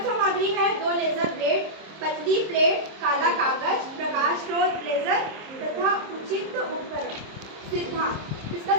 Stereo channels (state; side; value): late; left; 26 ms